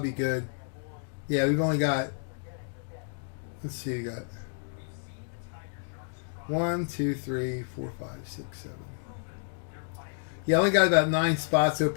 be good. Yeah, we've only got. Let's see, we got 1, 2, 3, 4, 5, 6, 7. Yeah, I only got about 9 spots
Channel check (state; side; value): silent; right; digital silence